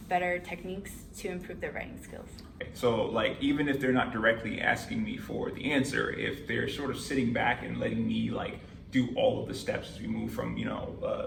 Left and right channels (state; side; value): identical; both; correlation 1.00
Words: better techniques to improve their writing skills. So like, even if they're not directly asking me for the answer, if they're sort of sitting back and letting me like do all of the steps as we move from,